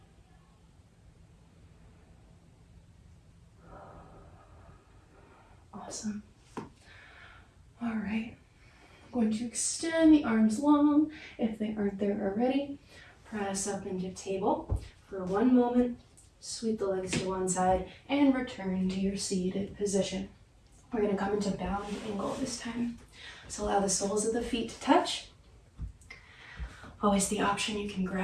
Awesome. All right. I'm going to extend the arms long if they aren't there already. Press up into table for 1 moment. Sweep the legs to one side and return to your seated position. We're going to come into bound angle this time. So allow the soles of the feet to touch. Always the option, you can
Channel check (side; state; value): both; identical; correlation 1.00